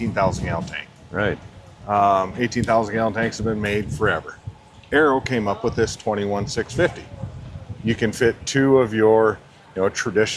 gallon tank. Right. 18,000 gallon tanks have been made forever. Arrow came up with this 21-650. You can fit two of your,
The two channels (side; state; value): both; identical; correlation 1.00